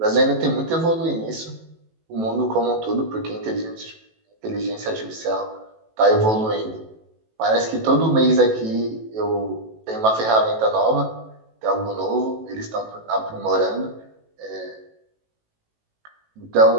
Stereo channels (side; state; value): left; late; 18 ms